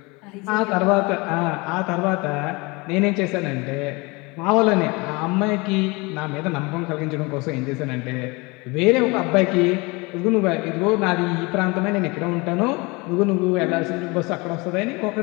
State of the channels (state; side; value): quieter; right; 26.0 dB